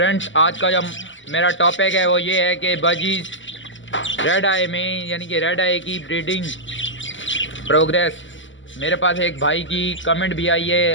आज का जो मेरा टॉपिक है वो ये है कि बजीज रेड आई में यानी कि रेड आई की ब्रीडिंग प्रोग्रेस। मेरे पास एक भाई की कमेंट भी आई है,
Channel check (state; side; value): late; right; 0.55 ms